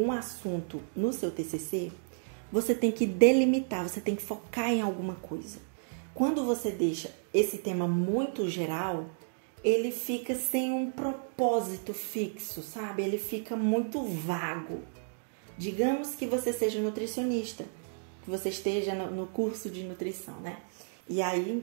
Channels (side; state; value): left; silent; digital silence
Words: assunto no seu TCC, você tem que delimitar, você tem que focar em alguma coisa. Quando você deixa esse tema muito geral, ele fica sem um propósito fixo, sabe? Ele fica muito vago. Digamos que você seja nutricionista, que você esteja no curso de nutrição, né? E